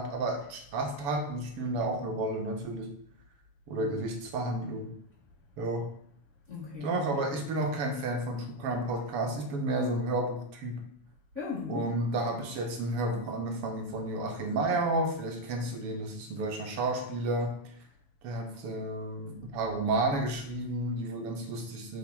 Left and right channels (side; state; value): left; late; 7.1 ms